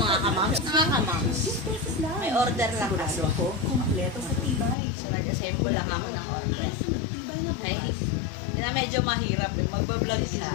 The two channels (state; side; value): drops out; right; at 4.8 s